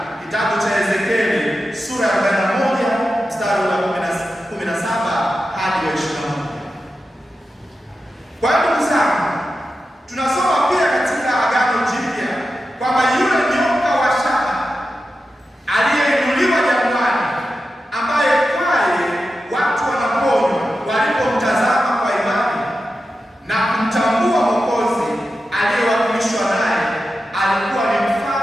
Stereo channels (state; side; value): normal; both; correlation 0.91